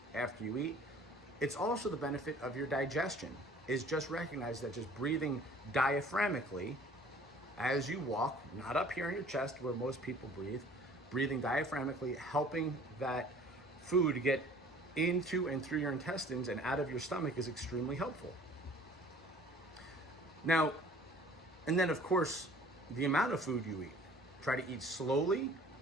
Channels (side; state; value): both; normal; correlation 0.51